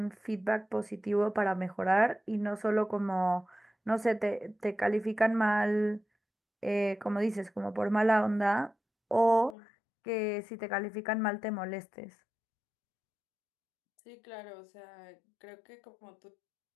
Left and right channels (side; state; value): right; drops out; at 9.6 s